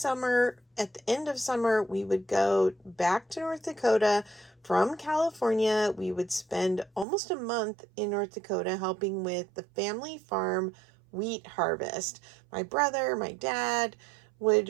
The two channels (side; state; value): left; drops out; at 7.1 s